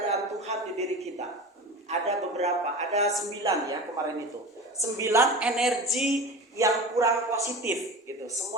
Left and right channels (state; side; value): normal; both; correlation 0.31